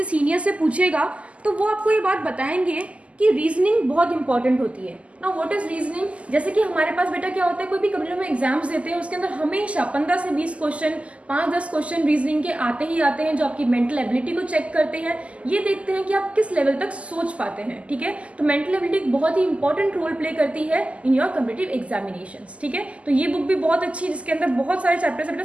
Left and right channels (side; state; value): left; late; 0.062 ms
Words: सीनियर से पूछेगा तो वो आपको ये बात बताएंगे कि रीजनिंग बहुत इंपॉर्टेंट होती है। Now what is reasoning? जैसे कि हमारे पास बेटा क्या होता है, कोई भी कभी हम एग्जाम्स देते हैं उसके अंदर हमेशा 15 से 20 क्वेश्चन, 5-10 क्वेश्चन रीजनिंग के आते ही आते हैं, जो आपकी मेंटल एबिलिटी को चेक करते हैं। ये देखते हैं कि आप किस लेवल तक सोच पाते हैं। ठीक है, तो मेंटल एबिलिटी एक बहुत ही इंपॉर्टेंट रोल प्ले करती है इन योर कॉम्पिटिटिव एग्जामिनेशंस। ठीक है, तो ये बुक भी बहुत अच्छी है जिसके अंदर बहुत सारे चैप्टर्स है